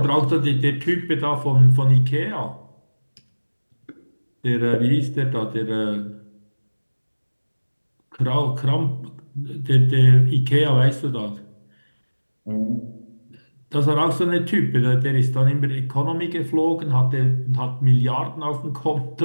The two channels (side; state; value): both; inverted; correlation -1.00